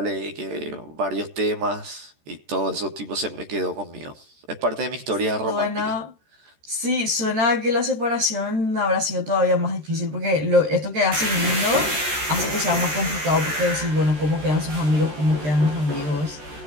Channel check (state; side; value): late; left; 13 ms